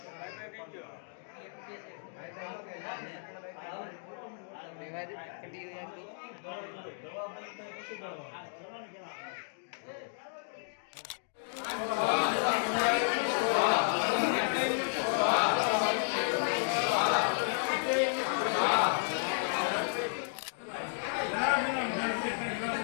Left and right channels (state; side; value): silent; right; digital silence